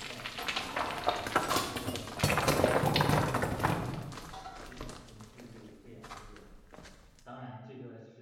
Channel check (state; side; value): identical; both; correlation 1.00